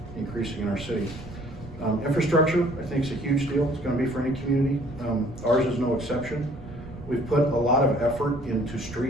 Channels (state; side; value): noise; right; rumble, 15 dB below the sound